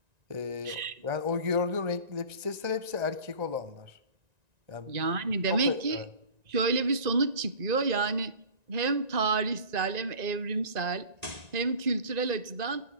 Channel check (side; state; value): left; late; 1.9 ms